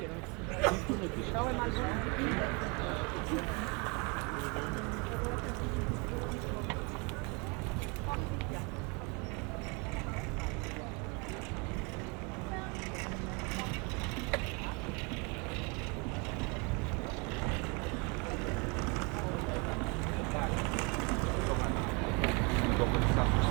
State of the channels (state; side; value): quieter; left; 30.3 dB